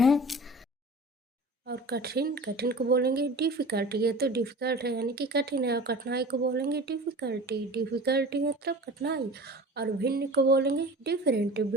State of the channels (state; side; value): normal; both; correlation 0.39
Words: है और कठिन। कठिन को बोलेंगे डिफ़िकल्ट। ये तो डिफ़िकल्ट है यानी कि कठिन है। और कठिनाई को बोलेंगे डिफ़िकल्टी। डिफ़िकल्टी मतलब कठिनाई। और भिन्न को बोलेंगे डिफरेंट।